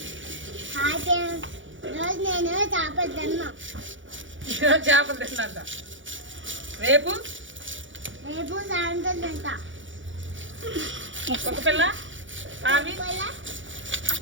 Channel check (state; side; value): late; left; 0.56 ms